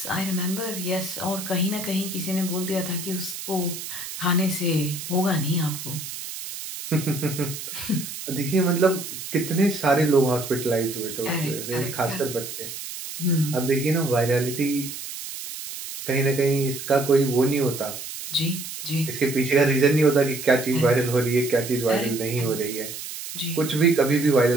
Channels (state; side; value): noise; right; hiss, 9 dB below the sound